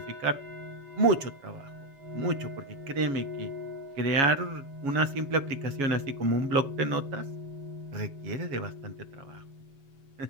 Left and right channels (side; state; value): left; late; 7.2 ms